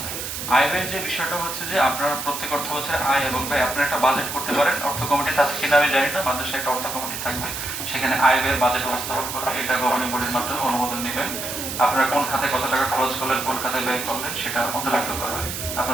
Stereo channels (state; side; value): noise; right; hiss, 6 dB below the sound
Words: আয় ব্যয়ের যে বিষয়টা হচ্ছে যে আপনার প্রত্যেক অর্থ বছরে আয় এবং ব্যয় আপনারা একটা বাজেট করতে পারেন। অর্থ কমিটি আছে কিনা আমি জানি না, মাদ্রাসায় একটা অর্থ কমিটি থাকবে, সেখানে আয় ব্যয়ের বাজেট উপস্থাপন করবে। এটা গভর্নিং বডির মাধ্যমে অনুমোদন নেবেন। আপনারা কোন খাতে কত টাকা খরচ করলেন, কোন খাতে ব্যয় করলেন, সেটা অন্তর্ভুক্ত করা হয়।